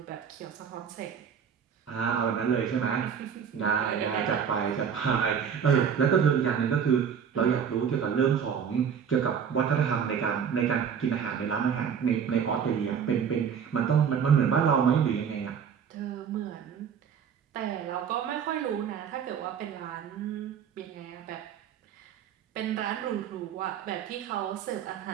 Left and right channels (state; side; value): quieter; left; 7.5 dB